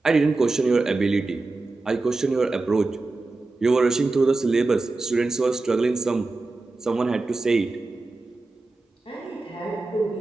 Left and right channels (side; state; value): left; quieter; 3.4 dB